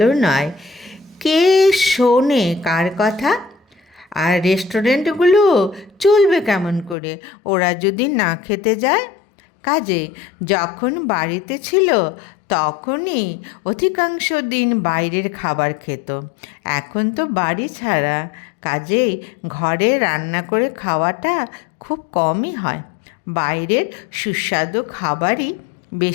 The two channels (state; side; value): drops out; right; at 7.0 s